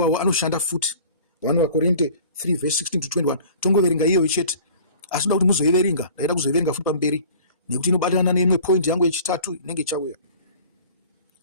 anoshanda futi. 1 Vakorinde 3 verse 16 to 21 tongoverenga iyoyo chete, asi ndoda kuti muzoiverenga, ndaida kuzoiverenga futi pamberi nekuti inobatana neimwe point yangu yechitatu inenge ichauya.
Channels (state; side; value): inverted; both; correlation -0.46